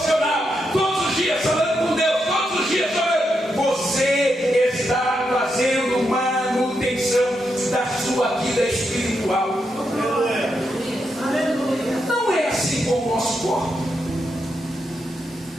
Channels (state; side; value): normal; both; correlation 0.83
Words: todos os dias falando com Deus, todos os dias orando. Você está fazendo manutenção da sua vida espiritual. Não é assim com o nosso corpo.